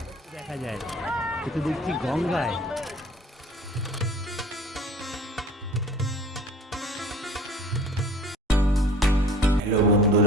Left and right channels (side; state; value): both; normal; correlation 0.47